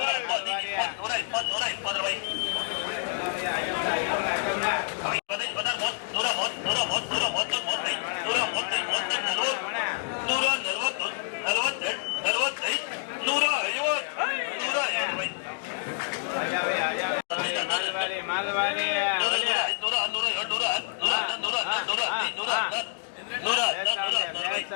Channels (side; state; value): right; silent; digital silence